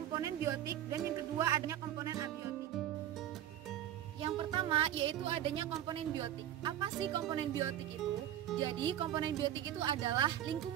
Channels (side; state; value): left; quieter; 11.3 dB